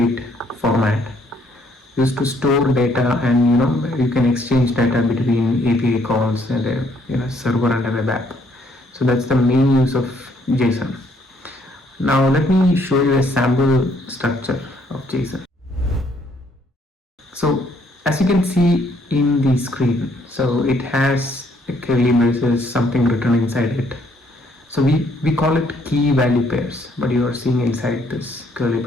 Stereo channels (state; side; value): normal; both; correlation 0.67